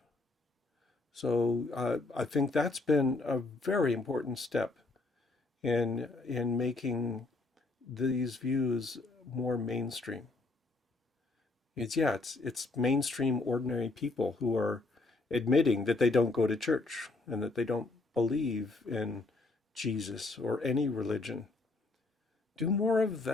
So I think that's been a very important step in making these views more mainstream. It's mainstream ordinary people who are admitting that they don't go to church and that they don't believe in Jesus or any religion. Do more of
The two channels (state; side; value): quieter; right; 3.3 dB